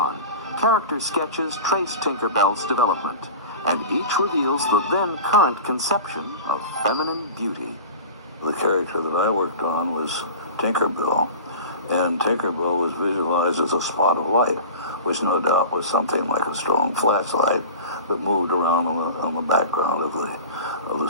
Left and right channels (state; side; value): inverted; both; correlation -0.35